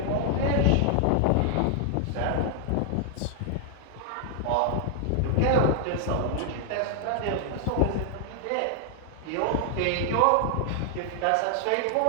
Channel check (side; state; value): both; different; correlation 0.00